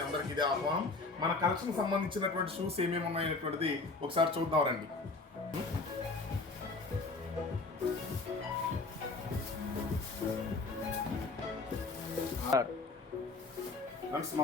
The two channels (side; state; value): right; quieter; 3.7 dB